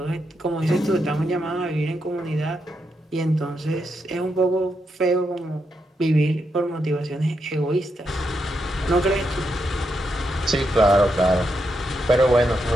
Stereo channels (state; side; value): normal; both; correlation 0.83